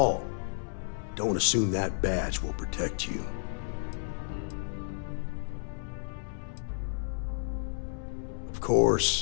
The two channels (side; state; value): right; silent; 57 dB below the other